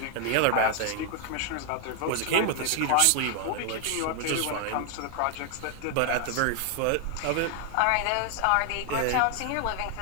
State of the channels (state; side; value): different; both; correlation 0.00